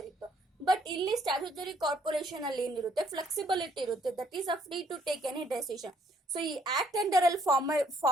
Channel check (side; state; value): both; normal; correlation 0.66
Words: ಇತ್ತು. ಬಟ್ ಇಲ್ಲಿ ಸ್ಟ್ಯಾಟ್ಯೂಟರಿ ಕಾರ್ಪೊರೇಷನ್ ಅಲ್ಲಿ ಏನಿರುತ್ತೆ, ಫ್ಲೆಕ್ಸಿಬಿಲಿಟಿ ಇರುತ್ತೆ. That is a free to take any decision. So ಈ ಆಕ್ಟ್ ಅಂಡರ್ ಅಲ್ಲಿ